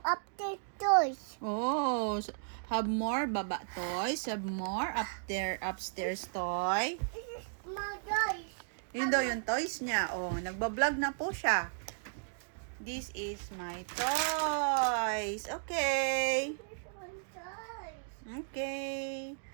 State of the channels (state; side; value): silent; left; digital silence